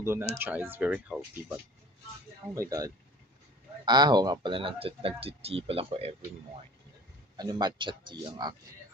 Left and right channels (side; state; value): both; normal; correlation 0.44